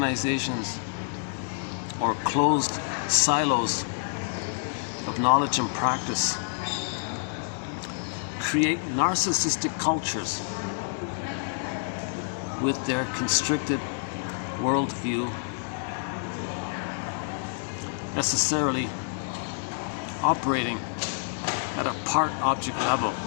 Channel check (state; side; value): silent; right; digital silence